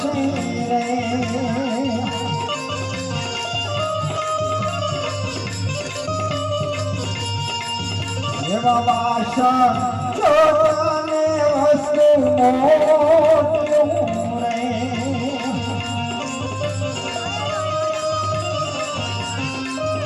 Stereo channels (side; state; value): both; identical; correlation 1.00